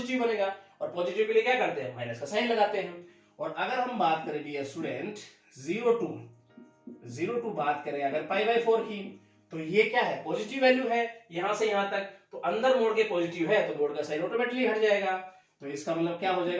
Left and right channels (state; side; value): identical; both; correlation 1.00